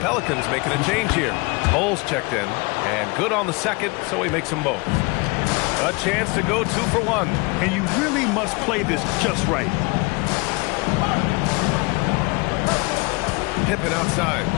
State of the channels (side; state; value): right; quieter; 27.3 dB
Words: making a change here. Bowles checked in. And good on the 2nd, so he makes them both. A chance to go 2 for 1. And you really must play this just right. Pippen outside.